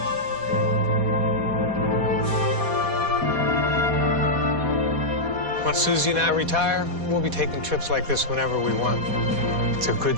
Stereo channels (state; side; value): late; left; 4.2 ms